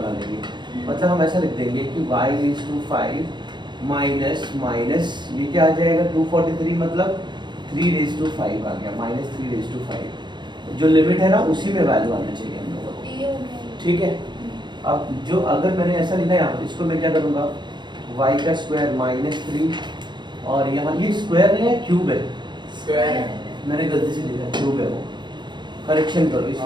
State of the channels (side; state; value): left; late; 0.22 ms